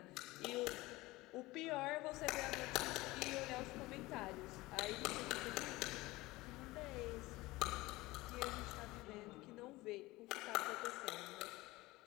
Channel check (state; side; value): quieter; right; 20.1 dB